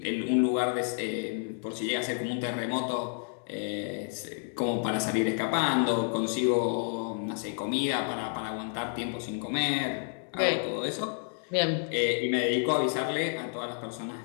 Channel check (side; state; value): right; silent; 58 dB below the other